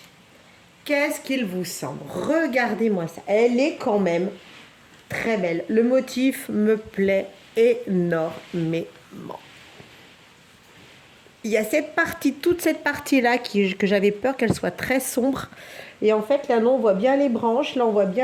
Qu'est-ce qu'il vous semble? Regardez-moi ça. Elle est quand même très belle. Le motif me plaît énormément. il y a cette partie, toute cette partie-là que j'avais peur qu'elle soit très sombre. Et en fait, là, non, on voit bien les branches, là, on voit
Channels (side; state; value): both; identical; correlation 1.00